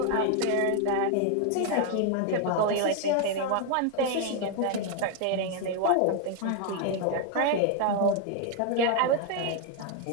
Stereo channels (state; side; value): different; both; correlation 0.01